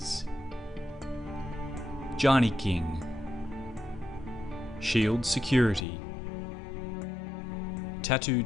Johnny King, Shield Security, Tattoo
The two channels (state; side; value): drops out; right; at 5.9 s